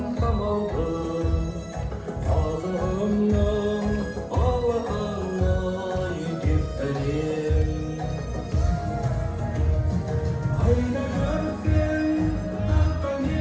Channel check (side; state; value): both; identical; correlation 1.00